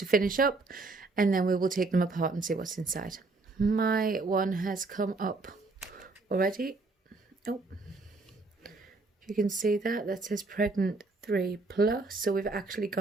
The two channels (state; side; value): quieter; left; 3.6 dB